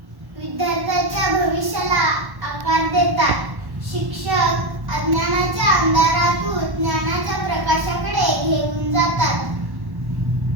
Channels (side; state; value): left; late; 1.1 ms